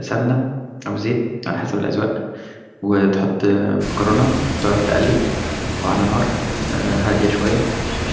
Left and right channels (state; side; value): identical; both; correlation 1.00